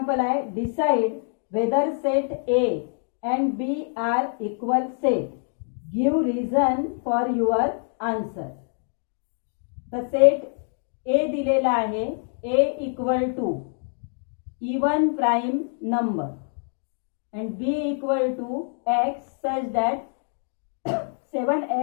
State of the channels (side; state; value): right; silent; 55 dB below the other